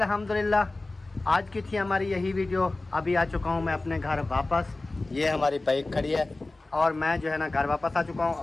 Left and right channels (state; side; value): quieter; right; 3.1 dB